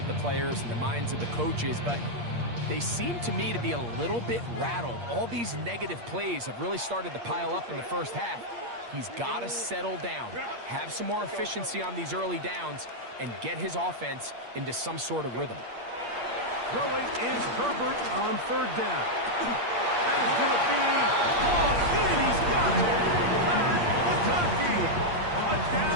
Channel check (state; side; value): late; left; 8.5 ms